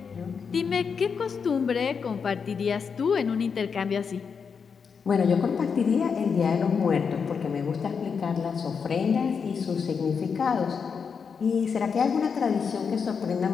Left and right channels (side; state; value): right; quieter; 6.1 dB